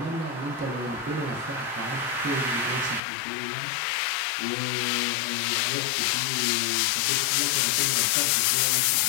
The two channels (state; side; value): drops out; right; at 3.0 s